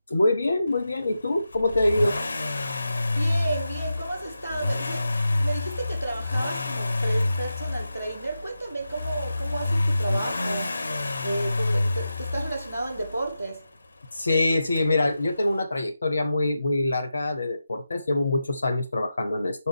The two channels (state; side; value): inverted; both; correlation -0.90